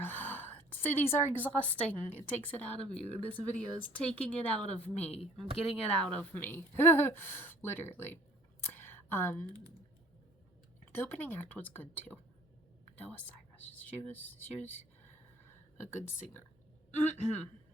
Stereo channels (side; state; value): both; normal; correlation 0.53